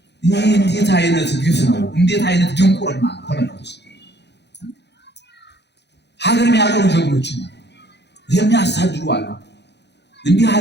ይህ እንዴት አይነት ግፍ ነው! እንዴት አይነት ድንቁርና! ተመልከቱ። ሀገር የሚያቀሩ ጀግኖች የሚያሳድዱ አሉ። እንዲህ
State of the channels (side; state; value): right; late; 0.50 ms